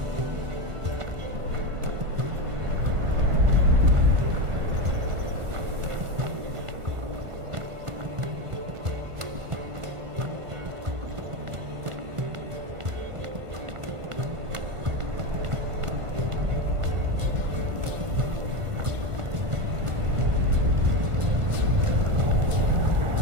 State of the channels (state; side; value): late; left; 1.5 ms